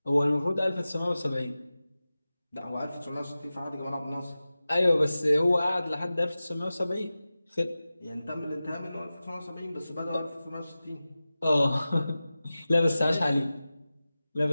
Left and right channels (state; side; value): inverted; both; correlation -0.95